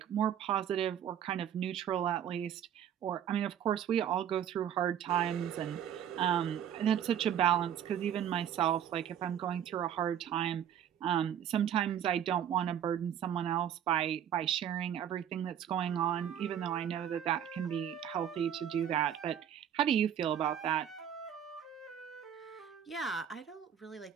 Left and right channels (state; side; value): quieter; left; 9.6 dB